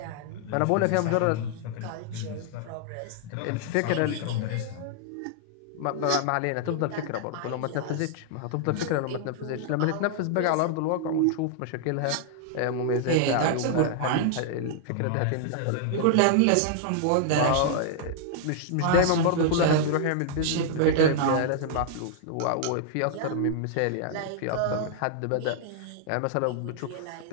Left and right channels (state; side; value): different; both; correlation -0.01